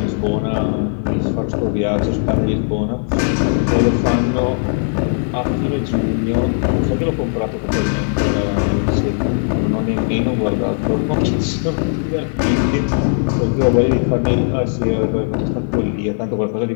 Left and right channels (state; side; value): silent; right; 64 dB below the other